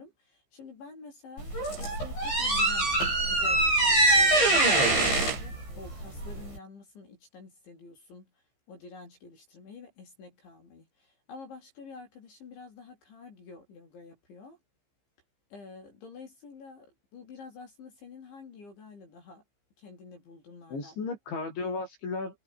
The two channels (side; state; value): right; late; 15 ms